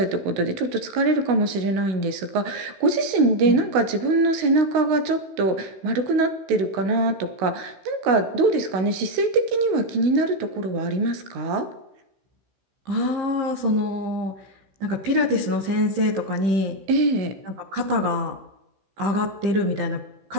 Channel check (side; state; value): left; late; 16 ms